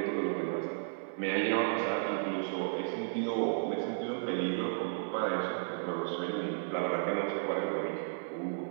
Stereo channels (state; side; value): silent; left; 55 dB below the other